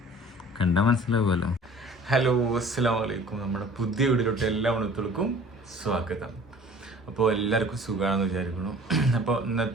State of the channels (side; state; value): both; normal; correlation 0.48